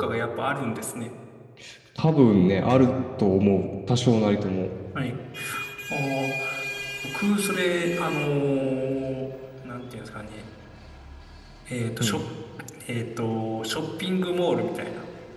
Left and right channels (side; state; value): both; identical; correlation 1.00